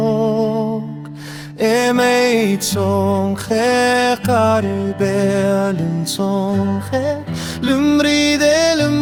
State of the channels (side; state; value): both; identical; correlation 1.00